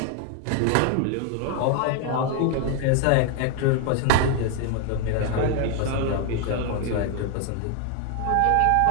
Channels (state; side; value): different; both; correlation 0.01